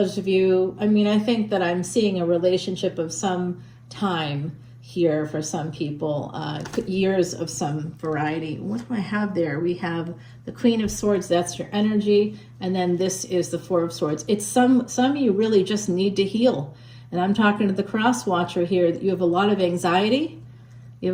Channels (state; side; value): identical; both; correlation 1.00